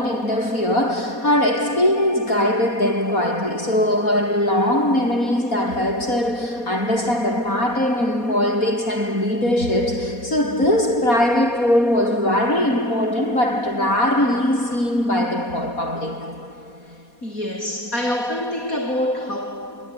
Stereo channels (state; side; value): late; right; 4.2 ms